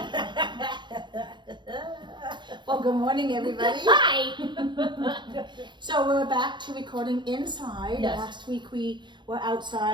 Well, good morning, everybody. Hi! So we're back to recording inside. Yes. Last week we were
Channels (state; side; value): late; left; 0.22 ms